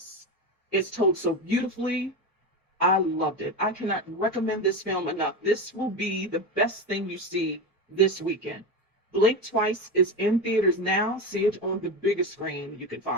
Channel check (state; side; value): normal; both; correlation 0.20